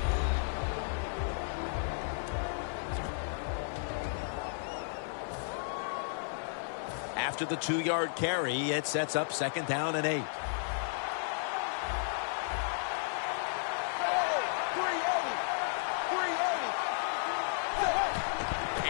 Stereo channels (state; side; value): silent; right; 55 dB below the other